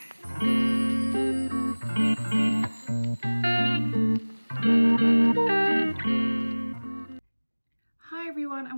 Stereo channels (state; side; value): inverted; both; correlation -1.00